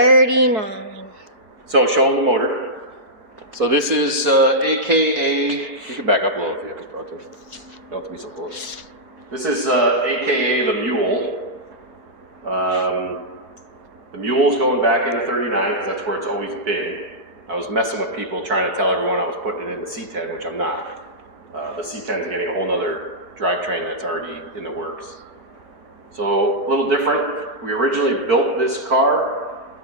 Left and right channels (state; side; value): late; left; 4.6 ms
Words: So show them the motor. So this is AKA, you can back up a little if you have to. You don't have to be so close. This is AKA the Mule. The Mule's going back into 39 because that's where it's always been. I was messing with people trying to tell everyone I was putting it in the C10, which I'm not. The C10 is getting a whole nother drivetrain that's already in the works. So a little different. We originally built this car